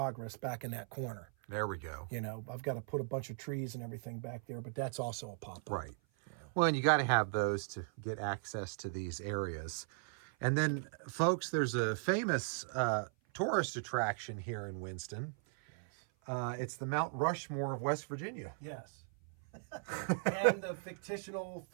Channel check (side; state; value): left; silent; 53 dB below the other